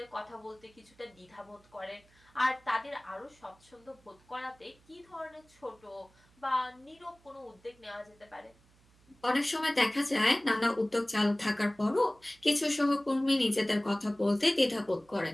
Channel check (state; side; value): noise; right; hum, 30 dB below the sound